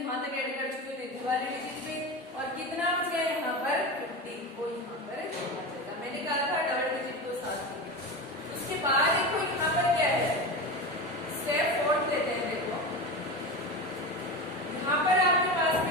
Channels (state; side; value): normal; both; correlation 0.24